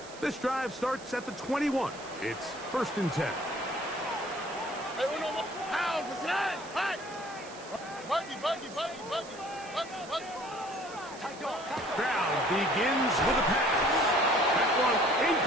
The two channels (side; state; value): right; noise; hiss, 18 dB below the sound